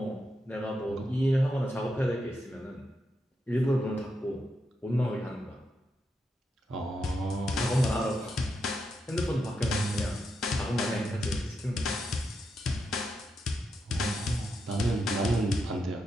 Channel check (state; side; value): normal; both; correlation 0.84